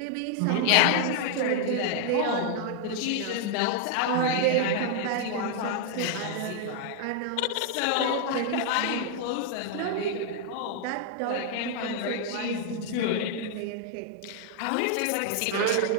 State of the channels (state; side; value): different; both; correlation 0.00